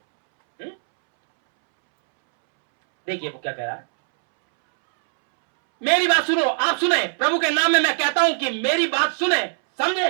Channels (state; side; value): silent; left; 65 dB below the other